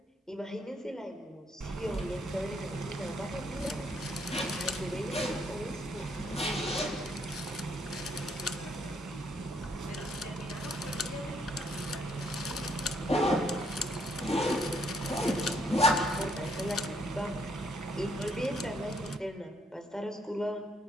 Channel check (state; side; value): normal; both; correlation 0.70